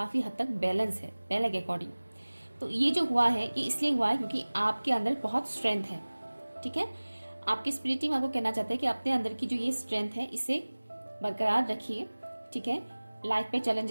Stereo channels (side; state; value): both; inverted; correlation -1.00